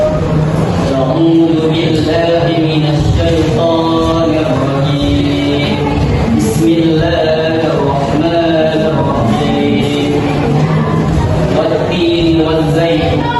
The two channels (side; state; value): both; identical; correlation 1.00